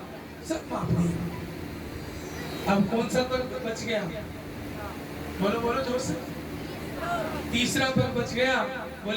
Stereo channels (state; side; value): identical; both; correlation 1.00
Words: सब माप दिया। अब कौन सा पग बच गया? बोलो बोलो जोर से। तीसरा पग बच गया।